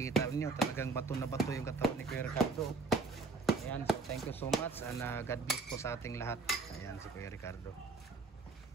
niyo, talagang bato na bato yung katawan ni Kuya Ricardo. Ayan, so thank you so much and God bless po sa ating lahat. Ayan si Kuya Ricardo.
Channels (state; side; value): quieter; left; 3.9 dB